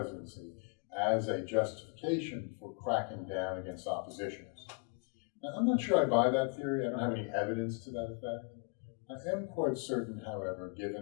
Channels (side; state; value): right; quieter; 36.7 dB